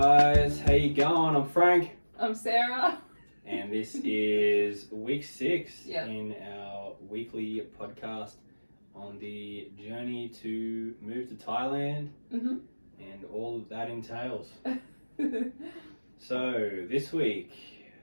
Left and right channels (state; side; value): inverted; both; correlation -1.00